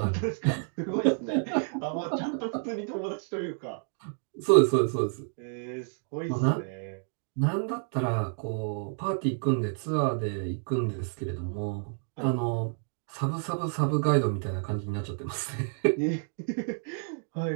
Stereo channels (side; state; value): left; silent; 58 dB below the other